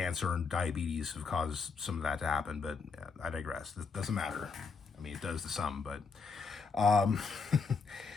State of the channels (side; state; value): right; quieter; 5.0 dB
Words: and diabetes have caused some of that to happen, but I digress. It doesn't matter. I mean, it does to some, but